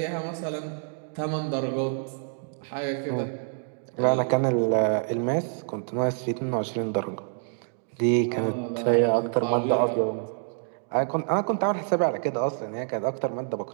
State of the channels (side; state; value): left; silent; digital silence